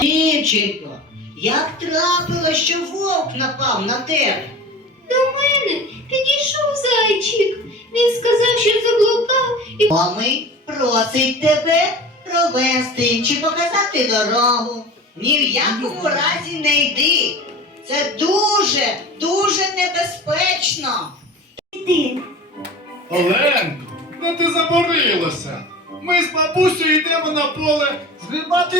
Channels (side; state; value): both; normal; correlation 0.36